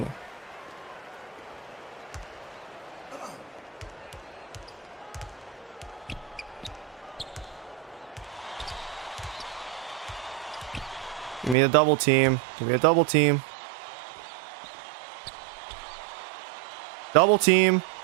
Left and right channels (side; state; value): left; drops out; at 11.6 s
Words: Give me a double team. Give me a double team. Double team.